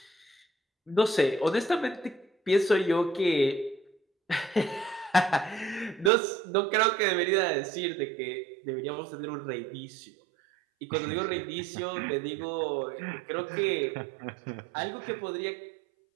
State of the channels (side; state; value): left; drops out; at 6.1 s